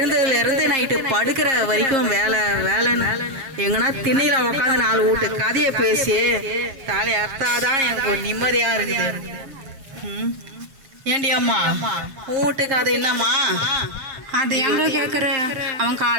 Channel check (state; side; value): late; left; 7.5 ms